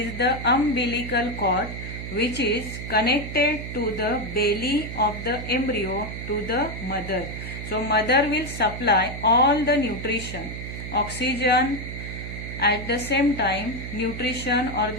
the umbilical cord which is connected to the belly of the embryo to the mother. So mother will supply all the nutrition, oxygen, at the same time nutrition or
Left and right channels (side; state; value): right; noise; hum, 8 dB below the sound